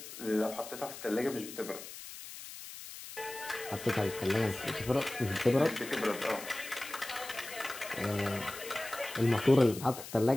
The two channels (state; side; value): noise; left; hiss, 12 dB below the sound